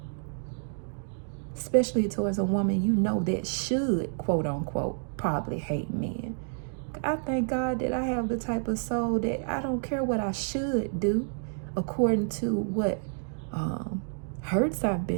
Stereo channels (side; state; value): left; silent; digital silence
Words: Especially towards a woman you know that should, quote unquote, probably hate men. I thank God that I have the type of soul that I don't care what I should do according to what hurts I've